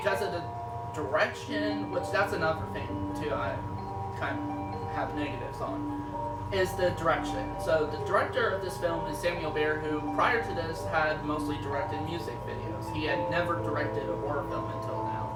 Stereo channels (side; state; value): both; identical; correlation 1.00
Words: of the direction, which that's another thing too, I kind of have negatives on, is the direction. So the director of this film is Samuel Baer, who prior to this had mostly directed music videos. He had never directed a horror film until now,